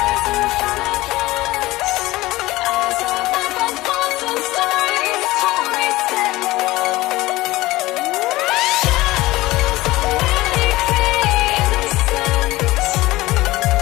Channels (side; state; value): right; quieter; 18.7 dB